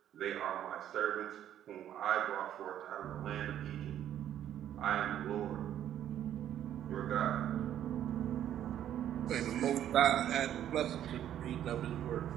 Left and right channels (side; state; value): left; quieter; 10.9 dB